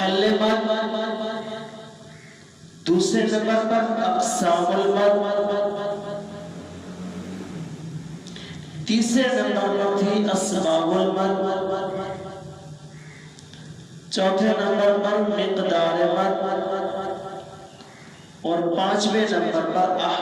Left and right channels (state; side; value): identical; both; correlation 1.00